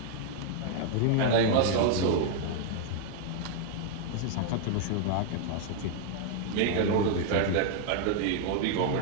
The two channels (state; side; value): different; both; correlation 0.00